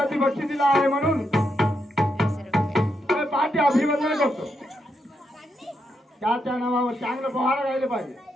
बक्षीस दिला आहे म्हणून पाठी अभिवादन करतो। त्याच्या नावावर चांगलं पोहार गायले पाहिजे।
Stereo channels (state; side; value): normal; both; correlation 0.82